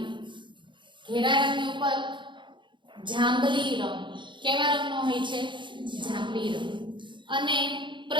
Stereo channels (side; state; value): left; late; 0.23 ms